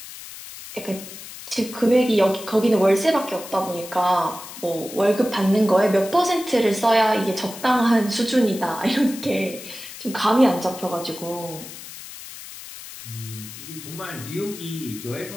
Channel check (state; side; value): noise; left; hiss, 13 dB below the sound